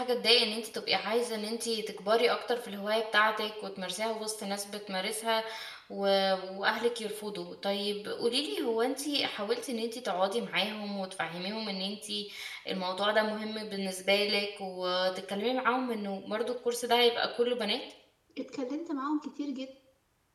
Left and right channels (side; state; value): both; identical; correlation 1.00